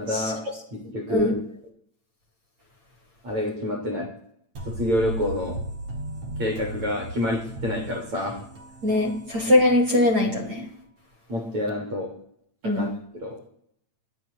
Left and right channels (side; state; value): left; late; 8.9 ms